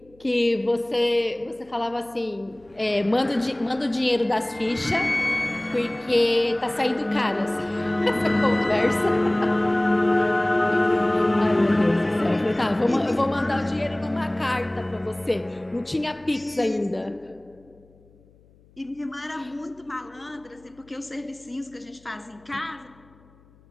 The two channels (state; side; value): noise; left; hum, 29 dB below the sound